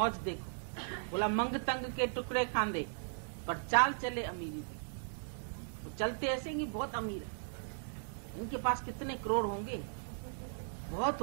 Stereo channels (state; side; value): silent; left; digital silence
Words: देखो। बोला मंग तंग के टुकड़े खांदे पर चाल चले अमीरी दे। तो चलते ऐसे कि बहुत अमीर है, इनके पास कितने करोड़ होंगे, बहुत